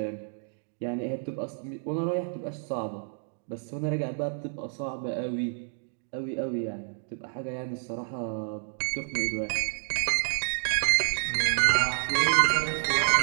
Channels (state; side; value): silent; left; digital silence